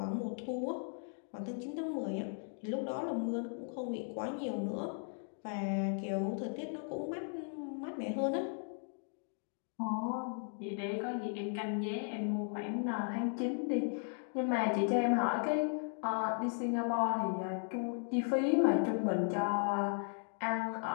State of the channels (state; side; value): silent; right; 53 dB below the other